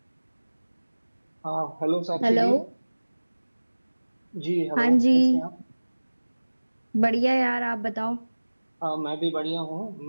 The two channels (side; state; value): both; inverted; correlation -1.00